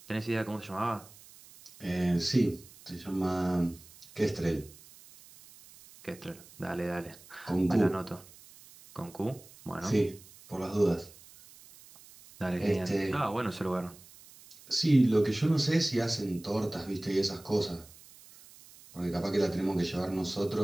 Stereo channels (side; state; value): right; noise; hiss, 22 dB below the sound